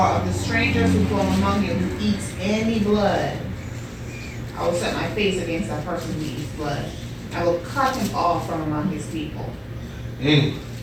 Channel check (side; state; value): both; identical; correlation 1.00